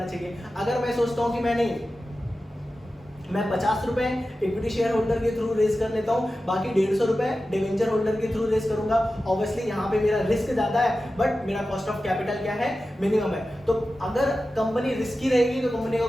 चाहिए। अगर मैं सोचता हूँ कि मैं 50 रुपए इक्विटी शेयर होल्डर के थ्रू रेस कर लेता हूं, बाकी 150 रुपए डिवेंचर होल्डर के थ्रू रेस करूंगा, ऑब्वियसली यहाँ पे मेरा रिस्क ज्यादा है बट मेरा कॉस्ट ऑफ कैपिटल क्या है, मिनिमम है। तो अगर कंपनी रिस्की रहेगी तो कंपनी का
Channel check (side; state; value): both; normal; correlation 0.93